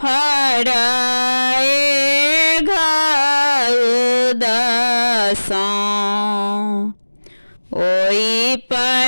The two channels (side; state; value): both; inverted; correlation -1.00